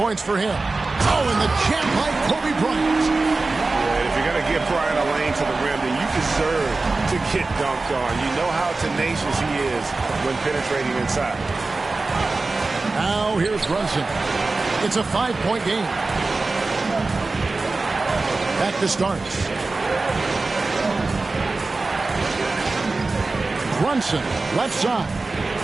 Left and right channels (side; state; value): left; quieter; 3.6 dB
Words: for him. Oh, and the champ like Kobe Bryant. Yeah, if you're going to give Bryant a lane to the rim, then you deserve to get dunked on. You know how tenacious he is when penetrating inside. Now here's Brunson. It's a 5-point game. Back to starts. Brunson, left side.